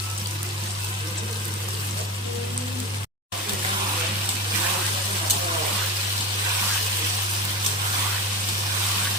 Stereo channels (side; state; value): both; normal; correlation 0.25